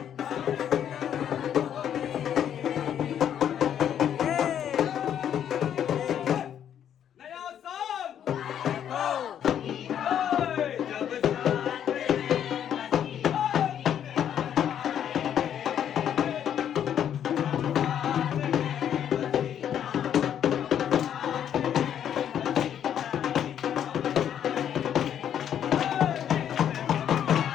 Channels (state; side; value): quieter; right; 9.6 dB